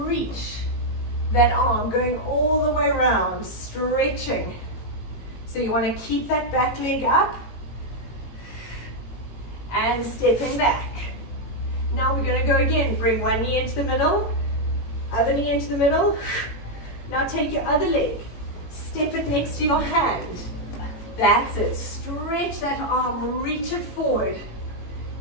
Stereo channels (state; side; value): late; right; 18 ms